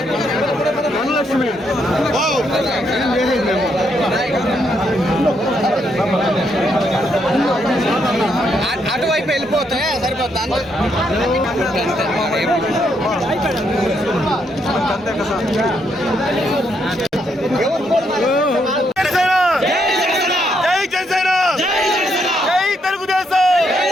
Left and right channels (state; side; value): normal; both; correlation 0.76